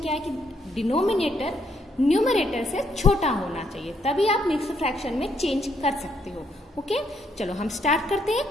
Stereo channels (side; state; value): both; normal; correlation 0.74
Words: है कि डिनोमिनेटर न्यूमरेटर से छोटा होना चाहिए, तभी आप मिक्स्ड फ्रैक्शन में चेंज कर सकते हो। ओके, चलो हम स्टार्ट करते हैं